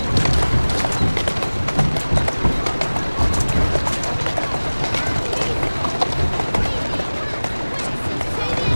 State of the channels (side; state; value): both; inverted; correlation -1.00